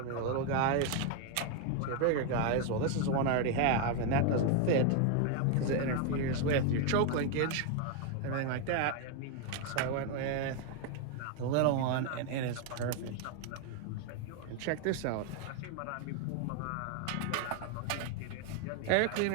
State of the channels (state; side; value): different; both; correlation 0.01